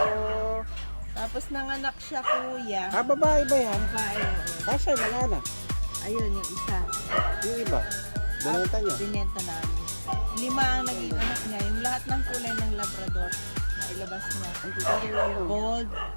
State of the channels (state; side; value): inverted; both; correlation -1.00